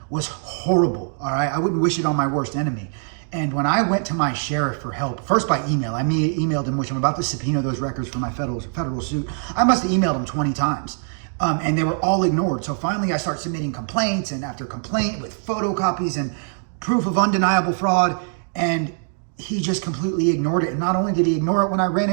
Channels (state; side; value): silent; left; 64 dB below the other